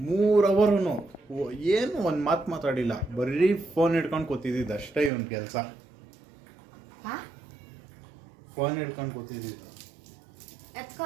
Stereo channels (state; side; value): drops out; left; at 5.1 s